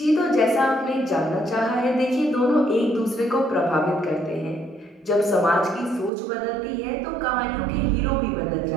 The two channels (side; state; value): left; drops out; at 6.1 s